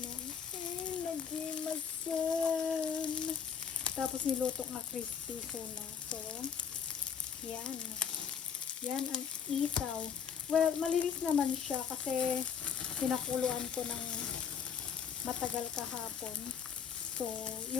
Nagimasan. Tapos niluto nga crispy na. So, yan. Yan ang isaw. Well, malinis naman siya kasi pinakuluan ko ng matagal kahapon. So,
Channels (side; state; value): right; quieter; 7.2 dB